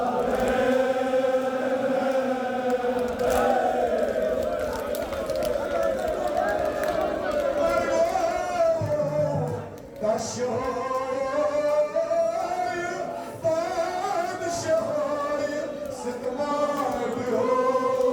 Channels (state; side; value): identical; both; correlation 1.00